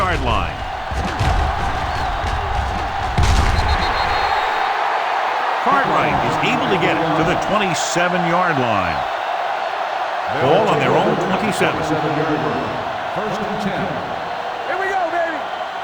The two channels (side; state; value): both; identical; correlation 1.00